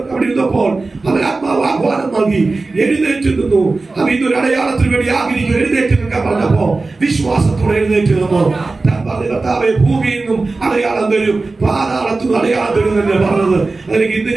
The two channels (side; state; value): left; quieter; 3.6 dB